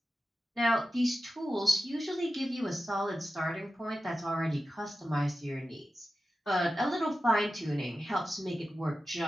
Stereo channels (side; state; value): both; normal; correlation 0.93